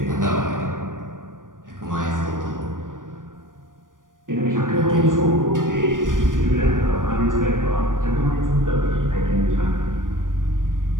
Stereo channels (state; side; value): late; left; 0.89 ms